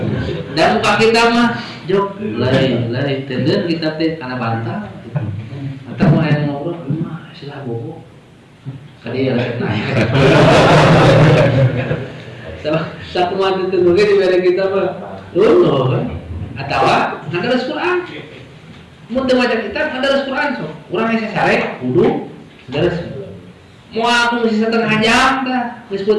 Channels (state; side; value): identical; both; correlation 1.00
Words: Dan muka kita mah jok lari tenden kita teh kana bantah. Atau mau yang ngobrol, mah silah bobo. Kali ya lagi naik. Satu mati tenggelam di beda kita mah, loh. Atau ada Quran. Mun teu maca kitab ada Quran so. Urang aya sare kudu dares. Mau aku ngisi setengah jam dah, geus